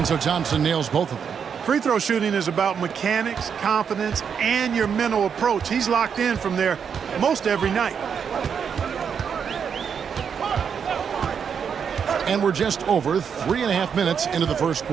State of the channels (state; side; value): quieter; left; 7.1 dB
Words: so Thompson nails both of them. Free throw shooting is about mechanics, confidence, and your mental approach. He's locked in from there most every night. And we're just over 3.5 minutes into the first